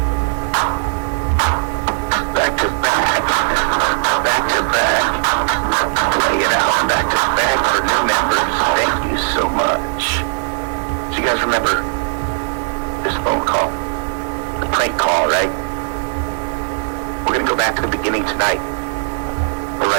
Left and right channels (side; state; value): left; silent; digital silence